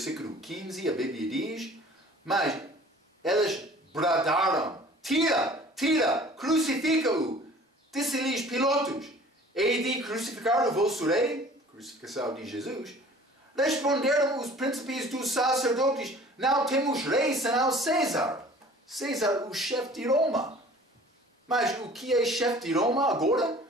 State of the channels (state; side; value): normal; both; correlation 0.48